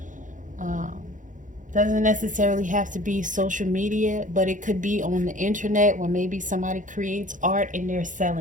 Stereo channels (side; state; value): left; late; 0.37 ms